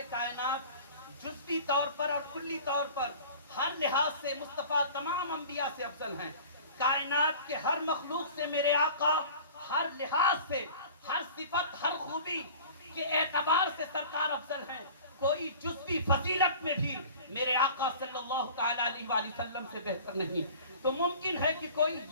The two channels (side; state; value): both; inverted; correlation -0.42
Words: کائنات جزوی طور پر اور کلی طور پر ہر لحاظ سے مصطفیٰ تمام انبیاء سے افضل ہیں۔ کائنات کے ہر مخلوق سے میرے آقا ہر لحاظ سے، ہر صفت، ہر خوبی کے اعتبار سے سرکار افضل ہیں۔ کوئی جزوی فضیلت میں بھی میرے آقا صلی اللہ تعالیٰ علیہ وآلہ وسلم سے بہتر نہیں۔ تو ممکن ہے کہ کوئی